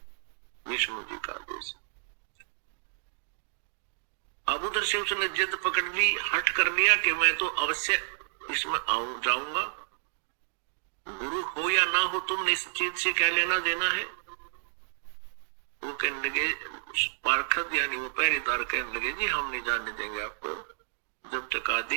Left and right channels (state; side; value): silent; left; digital silence